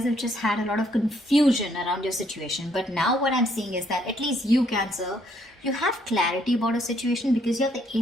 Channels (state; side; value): normal; both; correlation 0.69